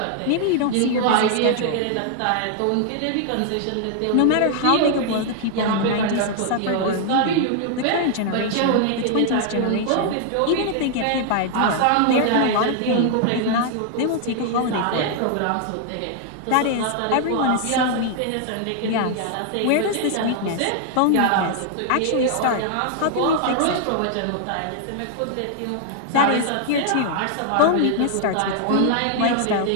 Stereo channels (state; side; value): different; both; correlation 0.00